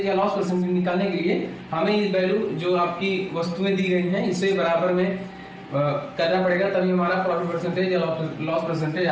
या लॉस परसेंटेज निकालने के लिए हमें ये वैल्यू जो आपकी वस्तुएं दी गई हैं इसे बराबर में करना पड़ेगा, तभी हमारा प्रॉफिट परसेंटेज या लॉस परसेंटेज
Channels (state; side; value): identical; both; correlation 1.00